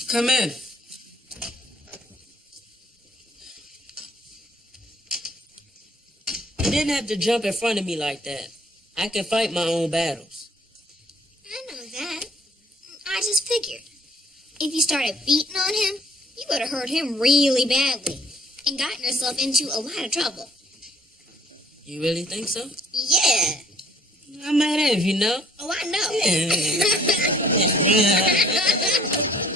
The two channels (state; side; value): normal; both; correlation 0.59